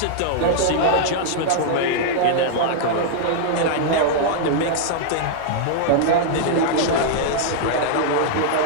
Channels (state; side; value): different; both; correlation -0.01